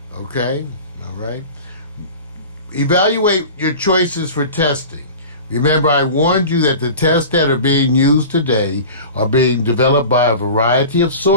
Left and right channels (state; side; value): inverted; both; correlation -0.36